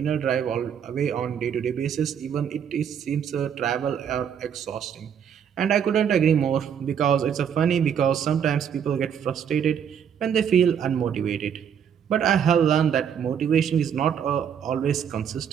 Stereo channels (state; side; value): quieter; left; 8.1 dB